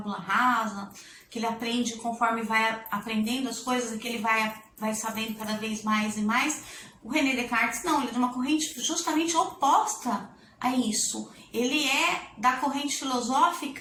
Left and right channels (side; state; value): both; identical; correlation 1.00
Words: rasa, que ele aprende conforme vai aprendendo as coisas e que ele vai sabendo cada vez mais e mais. O René Descartes não, ele é de uma corrente justamente oposta a isso. Ele é da corrente